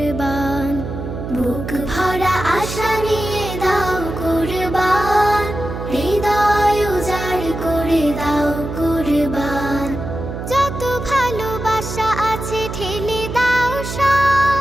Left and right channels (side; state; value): right; noise; hum, 7 dB below the sound